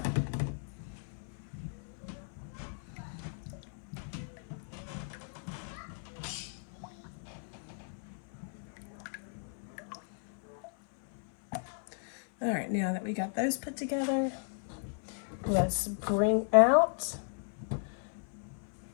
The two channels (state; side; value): silent; right; 54 dB below the other